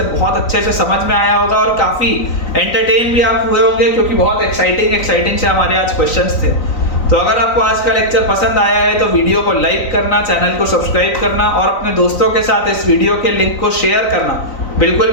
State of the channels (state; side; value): late; right; 3.9 ms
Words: बहुत अच्छे से समझ में आया होगा और काफी एंटरटेन भी आप हुए होंगे, क्योंकि बहुत एक्साइटिंग से हमारे आज क्वेश्चंस थे। तो अगर आपको आज का लेक्चर पसंद आया है तो वीडियो को लाइक करना, चैनल को सब्सक्राइब करना और अपने दोस्तों के साथ इस वीडियो के लिंक को शेयर करना बिल्कुल